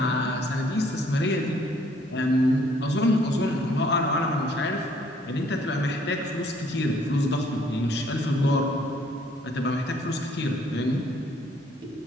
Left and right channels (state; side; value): normal; both; correlation 0.62